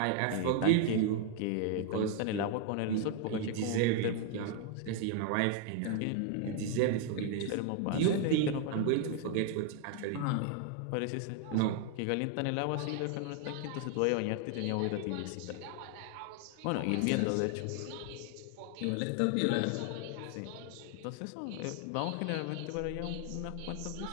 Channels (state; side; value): different; both; correlation 0.00